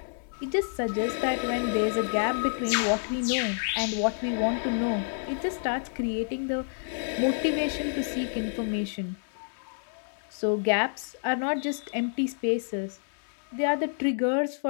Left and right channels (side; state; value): right; silent; digital silence